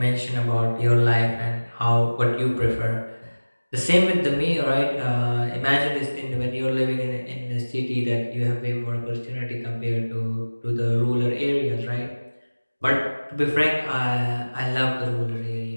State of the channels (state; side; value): inverted; both; correlation -1.00